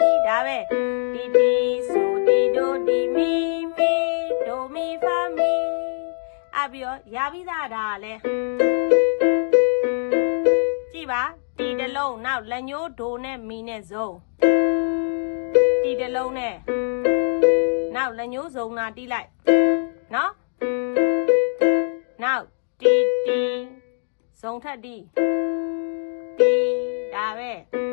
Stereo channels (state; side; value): silent; right; digital silence